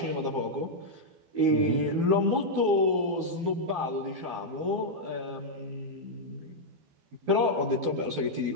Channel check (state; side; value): late; left; 12 ms